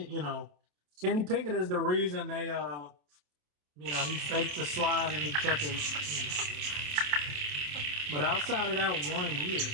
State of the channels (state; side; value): late; left; 27 ms